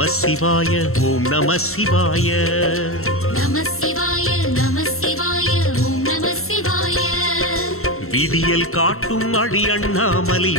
சிவாய ஓம் நம சிவாய நம சிவாய நம சிவாய விடியல் காட்டும் அடி அண்ணாமலை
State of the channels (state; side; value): late; right; 0.63 ms